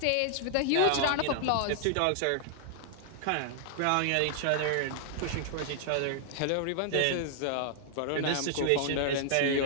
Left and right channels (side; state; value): both; different; correlation -0.01